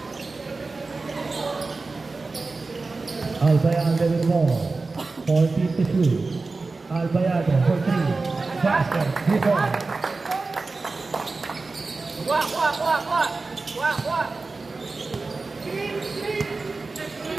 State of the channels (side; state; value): left; quieter; 3.8 dB